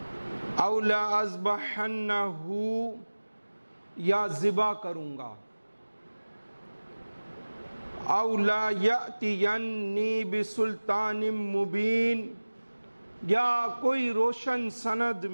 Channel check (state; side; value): inverted; both; correlation -1.00